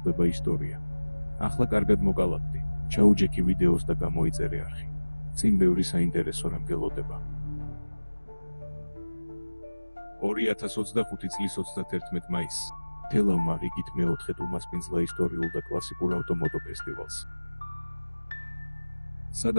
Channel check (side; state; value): both; inverted; correlation -1.00